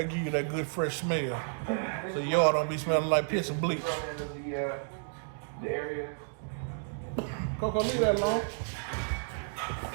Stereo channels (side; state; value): left; silent; digital silence